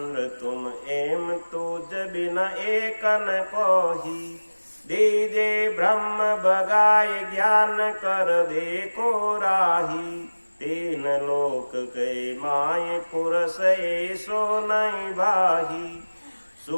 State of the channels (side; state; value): both; inverted; correlation -1.00